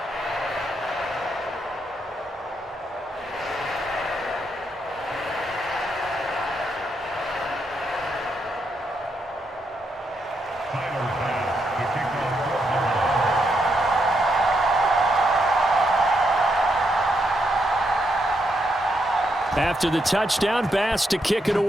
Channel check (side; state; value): both; normal; correlation 0.79